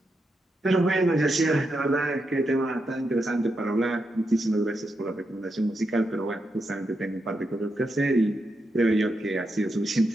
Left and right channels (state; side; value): normal; both; correlation 0.85